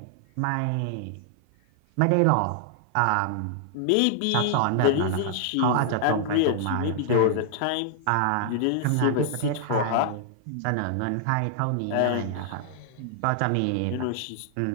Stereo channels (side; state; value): both; different; correlation -0.01